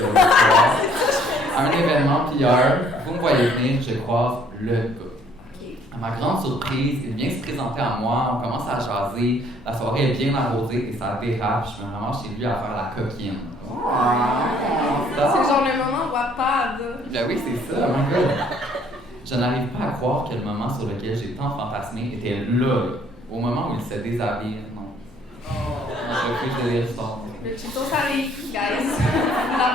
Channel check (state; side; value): normal; both; correlation 0.61